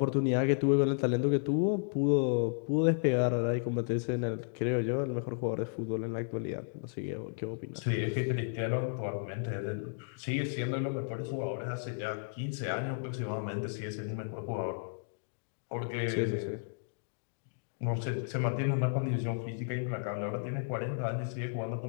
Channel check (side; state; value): right; silent; digital silence